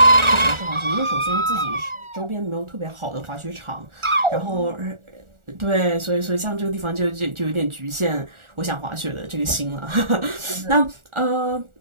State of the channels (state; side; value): late; left; 1.4 ms